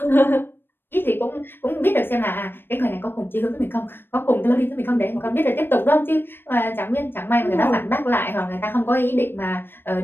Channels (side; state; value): right; late; 0.099 ms